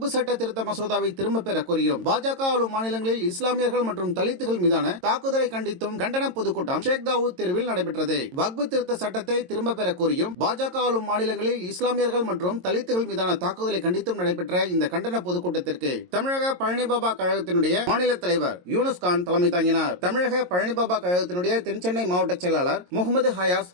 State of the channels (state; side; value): late; left; 22 ms